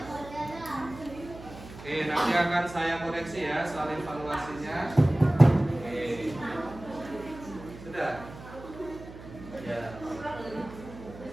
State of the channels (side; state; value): right; noise; hum, 15 dB below the sound